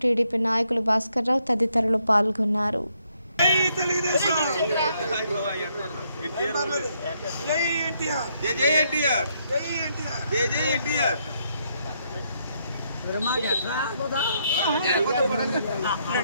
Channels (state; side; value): inverted; both; correlation -0.74